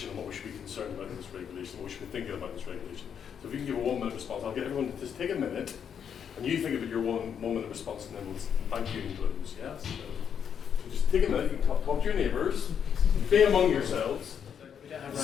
and what we should be concerned about in this regulation, what we should be thinking about in this regulation. So if you can give a 1 minute response, I'll get everyone to just take a minute and you think about your 1 minute response and then we'll thank you and close. Yes? So just take a minute, you can talk to your neighbours, be among yourselves.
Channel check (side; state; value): right; quieter; 7.9 dB